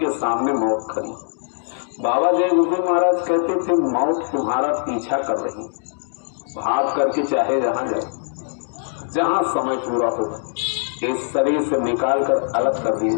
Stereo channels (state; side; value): silent; right; digital silence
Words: सामने मौत खड़ी। बाबा जय गुरुदेव महाराज कहते थे मौत तुम्हारा पीछा कर रही, भाग करके चाहे जहां जाओ, जहां समय पूरा हो इस शरीर से निकाल कर अलग कर दिए